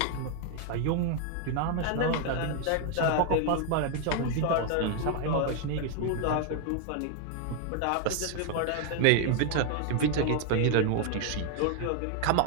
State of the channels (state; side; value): different; both; correlation 0.00